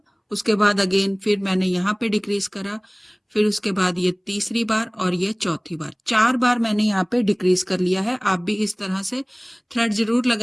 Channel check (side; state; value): both; identical; correlation 1.00